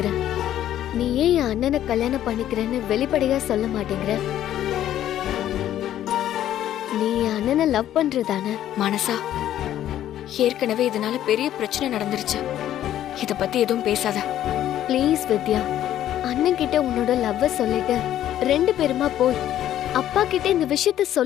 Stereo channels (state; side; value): quieter; right; 11.9 dB